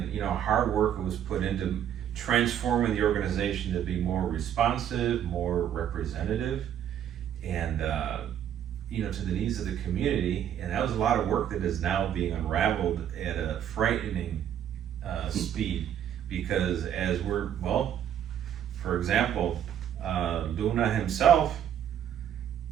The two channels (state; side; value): quieter; left; 9.9 dB